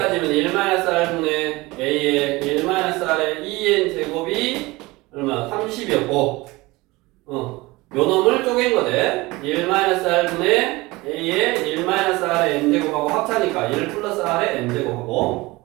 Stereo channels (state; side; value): quieter; left; 21.6 dB